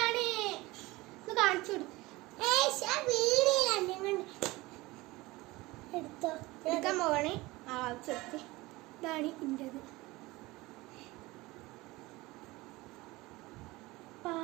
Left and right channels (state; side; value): quieter; left; 20.9 dB